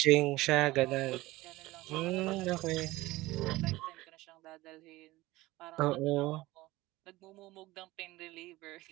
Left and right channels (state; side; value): quieter; left; 18.9 dB